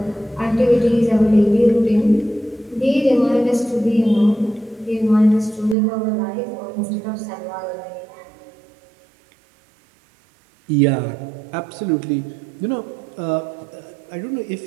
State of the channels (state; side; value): drops out; left; at 5.8 s